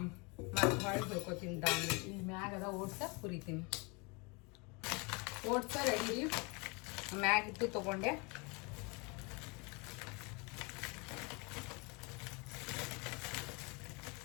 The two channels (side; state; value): right; quieter; 29.8 dB